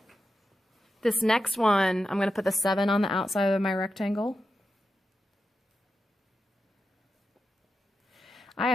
This next one, I'm going to put the 7 on the outside of my rectangle. I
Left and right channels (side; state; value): both; normal; correlation 0.89